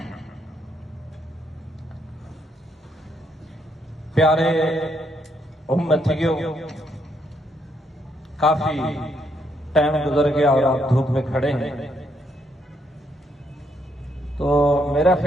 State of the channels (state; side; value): normal; both; correlation 0.75